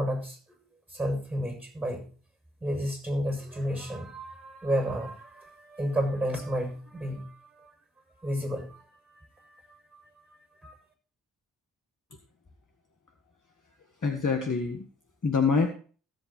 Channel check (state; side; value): normal; both; correlation 0.68